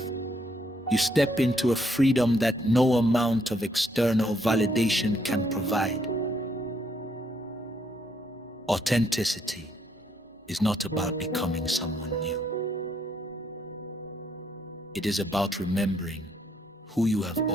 you step into a freedom that no amount of external validation can provide. Authenticity is not about becoming someone new. It is about remembering who you have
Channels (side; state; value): both; normal; correlation 0.72